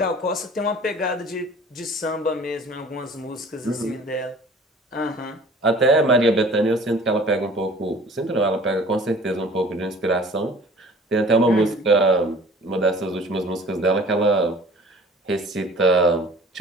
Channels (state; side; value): normal; both; correlation 0.48